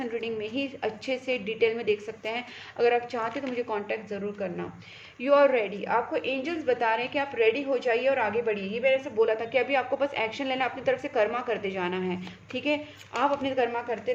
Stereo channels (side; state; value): both; identical; correlation 1.00